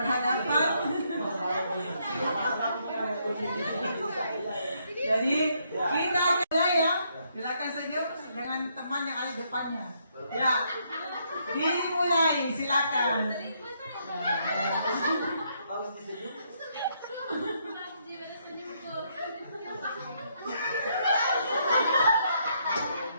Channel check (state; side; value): inverted; both; correlation -0.74